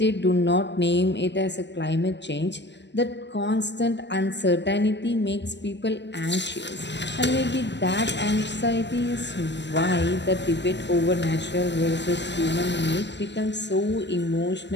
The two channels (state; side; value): late; right; 0.51 ms